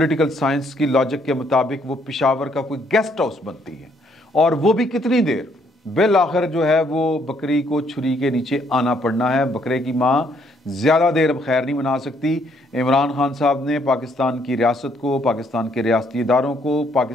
साइंस की लॉजिक के मुताबिक वो पेशावर का कोई गेस्ट हाउस बनती है, और वो भी कितनी देर, बिल आखिर जो है वो बकरी को छुरी के नीचे आना पड़ना है। बकरे की माँ ज़्यादा देर अब खैर नहीं मना सकती। इमरान खान साहब ने पाकिस्तान की रियासत को, पाकिस्तान के रियासती इदारों को,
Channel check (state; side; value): normal; both; correlation 0.69